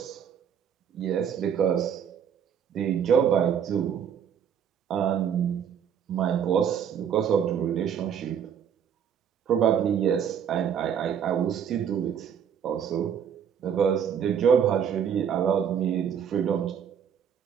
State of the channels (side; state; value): left; quieter; 8.1 dB